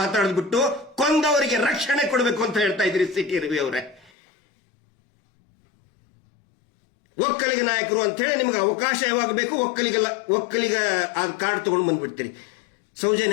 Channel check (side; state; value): right; drops out; at 4.1 s